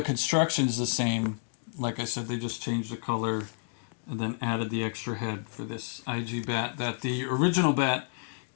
construction's the same. Like I said, they just changed the color and then added the extra head for this IG bat. That the original bat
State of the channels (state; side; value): silent; right; digital silence